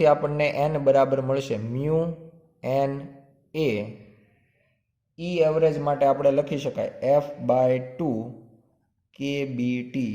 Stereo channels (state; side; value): identical; both; correlation 1.00